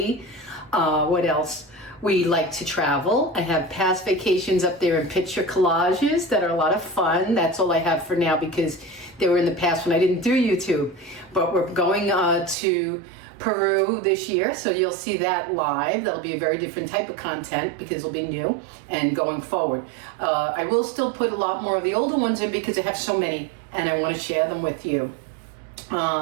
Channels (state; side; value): drops out; left; at 12.6 s